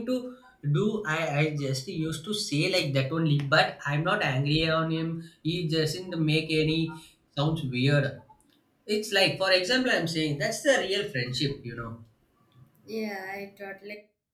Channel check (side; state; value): both; identical; correlation 1.00